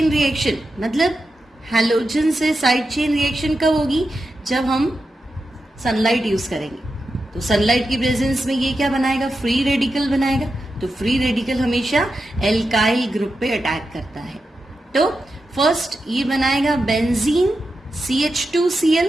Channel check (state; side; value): normal; both; correlation 0.89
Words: रिएक्शन, मतलब हैलोजन से साइड चेन रिएक्शन कब होगी? जब हम सनलाइट यूज करेंगे। तो सनलाइट की प्रेजेंस में ये क्या बनाएगा? फ्री रेडिकल बनाएगा। तो फ्री रेडिकल हमेशा एल्काइल ग्रुप पे अटैक करता है। तो फर्स्ट ये बनाएगा बेंजीन CH2Cl